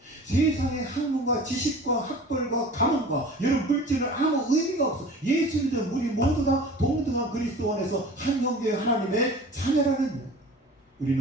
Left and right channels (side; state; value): both; normal; correlation 0.41